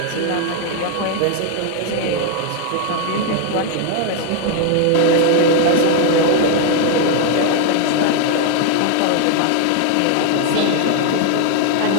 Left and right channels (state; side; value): different; both; correlation 0.00